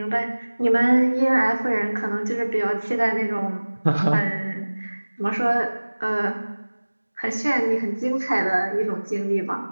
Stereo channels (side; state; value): both; inverted; correlation -1.00